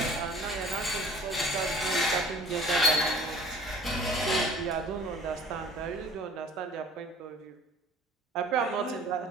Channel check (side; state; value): both; normal; correlation 0.48